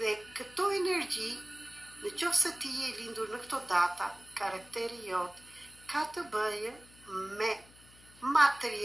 këto energji, në qoftë se ti je lindur në këto data, karakteri jot ka të bëjë me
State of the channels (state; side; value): noise; left; hum, 24 dB below the sound